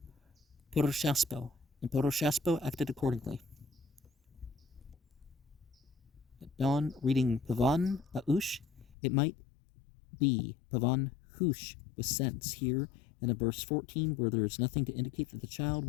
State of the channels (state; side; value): drops out; right; at 9.0 s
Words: Poroshaspo, and Poroshaspo acted accordingly. At dawn, reading Pavan Aush, it might be Pavan Hush with sense here, and in verse 14, where there is nothing to indicate that the child